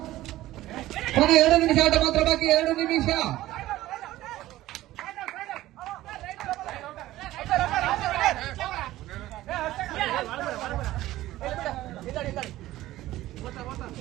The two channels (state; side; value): quieter; left; 15.7 dB